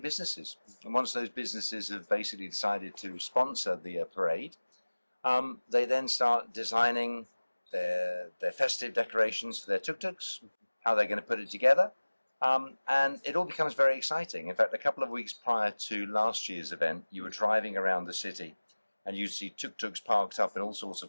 businesses. And once those businesses have basically decided to sponsor the parade, they then start designing their festive decorations for their tuk-tuks, how they're going to put it together. And it all becomes very exciting. In fact, a couple of weeks prior to last year's event, you were driving around the city and you see tuk-tuks parked up in all sorts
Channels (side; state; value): both; inverted; correlation -1.00